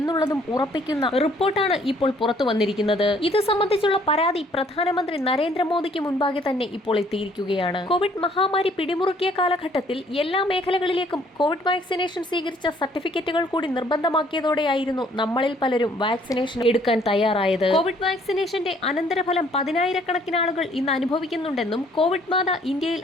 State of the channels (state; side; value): normal; both; correlation 0.61